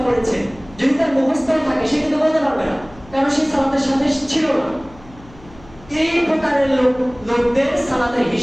পড়েছেন, যদি তার মুখস্থ থাকে সে কিন্তু বলতে পারবে না, কারণ সে সালাতের সাথে ছিল না। এই প্রকারের লোকদের সালাতের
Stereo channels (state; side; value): noise; left; hum, 22 dB below the sound